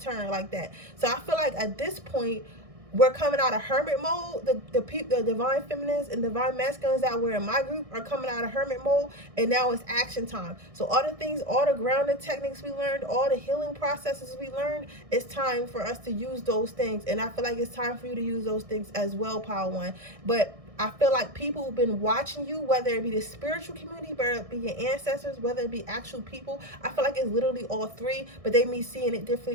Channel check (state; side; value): late; left; 1.6 ms